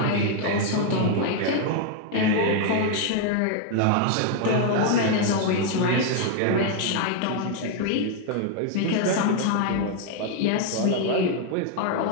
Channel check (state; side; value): different; both; correlation 0.00